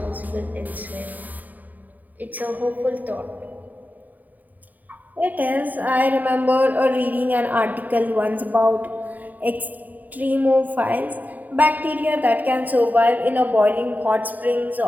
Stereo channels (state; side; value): late; left; 0.082 ms